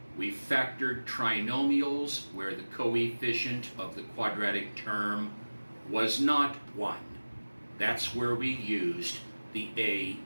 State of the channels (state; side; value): inverted; both; correlation -1.00